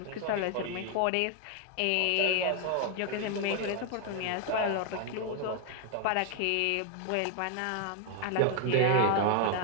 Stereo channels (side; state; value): both; different; correlation 0.00